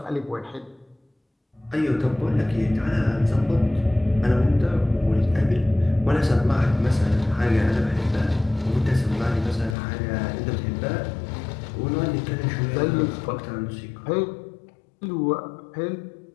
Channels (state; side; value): drops out; right; at 9.8 s